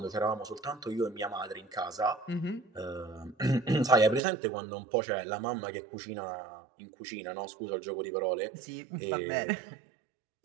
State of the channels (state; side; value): drops out; left; at 4.2 s